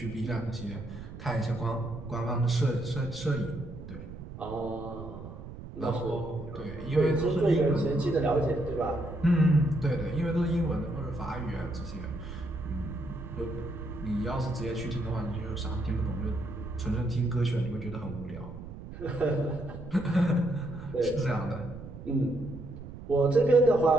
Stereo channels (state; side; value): noise; right; rumble, 12 dB below the sound